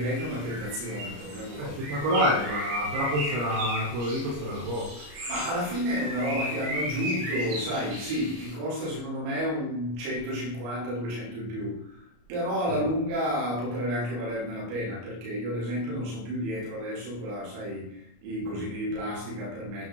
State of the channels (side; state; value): left; late; 34 ms